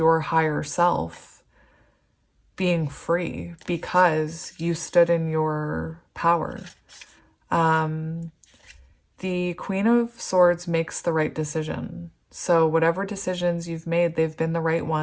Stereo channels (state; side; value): identical; both; correlation 1.00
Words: higher self being free because you stood in your power. The Queen of Swords makes the right decision. So whatever decisions you've made, they've been the right